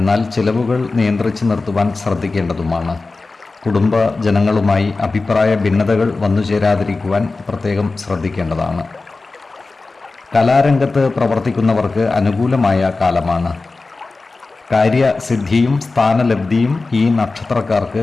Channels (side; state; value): right; quieter; 3.7 dB